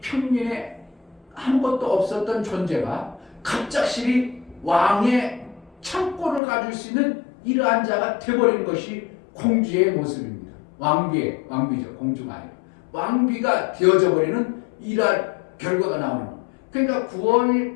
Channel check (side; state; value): right; drops out; at 6.4 s